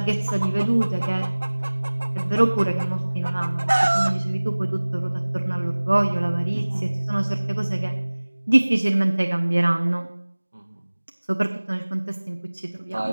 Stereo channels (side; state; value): both; inverted; correlation -1.00